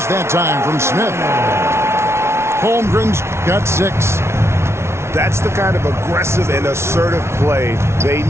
that time from Smith. Holmgren's got 6. That's the kind of aggressive and assertive play they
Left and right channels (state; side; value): late; left; 0.13 ms